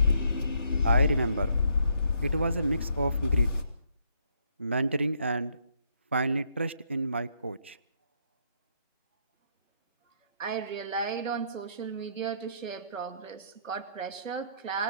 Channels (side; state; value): both; inverted; correlation -0.72